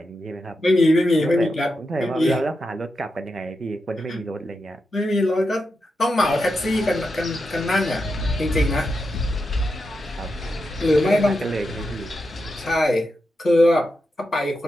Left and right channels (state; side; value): normal; both; correlation 0.87